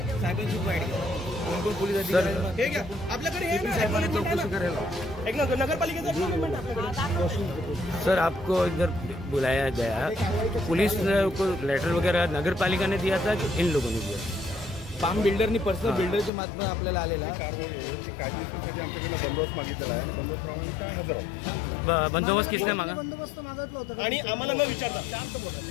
हे घ्या. आपल्याकडे हे ना नगरपालिकेचं एक्नॉलेजमेंट आपल्याकडे. सर, आपको इधर बुलाया गया, पुलिस को लेटर वगैरह नगर पालिका ने दिया था कि इन लोगों ने दिया? फार्म बिल्डरनी पर्सनल बिल्डरच्या माध्यमातून आपल्याला आलेला आहे. कारवाईची कायदेशीरसाठी आमच्याकडे बंदोबस्त मागितलेला आहे आणि बंदोबस्तप्रमाणे काय हजर आहोत. बंदोबस्त किसने मागा? आणि आम्हाला न विचारता शांत बोला.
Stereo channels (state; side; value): drops out; right; at 16.3 s